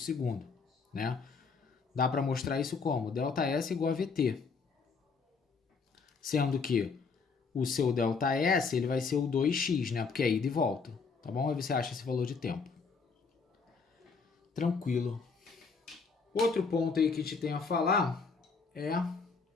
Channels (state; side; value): quieter; right; 4.9 dB